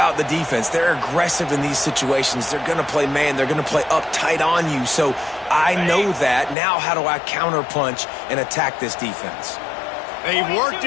the defense, they're aggressive in these situations. They're going to play man. They're going to play up tight on you. So I know that. Now how do I counterpunch and attack this defense? They worked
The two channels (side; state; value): right; drops out; at 6.6 s